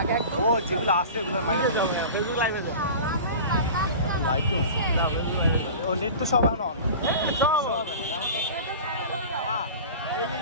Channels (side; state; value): both; inverted; correlation -0.36